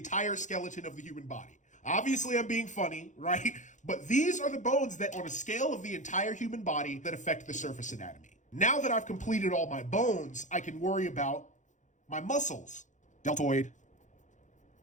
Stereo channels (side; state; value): right; late; 0.36 ms